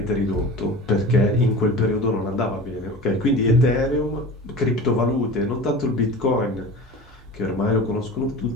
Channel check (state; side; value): normal; both; correlation 0.35